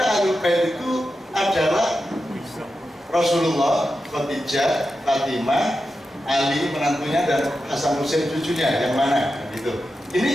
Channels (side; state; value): both; normal; correlation 0.90